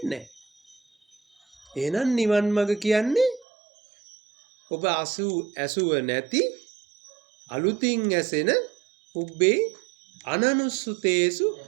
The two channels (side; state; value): left; drops out; at 3.5 s